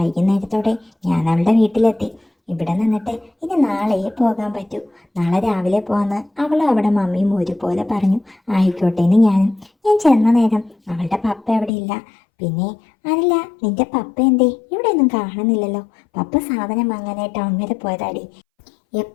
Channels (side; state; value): right; drops out; at 11.7 s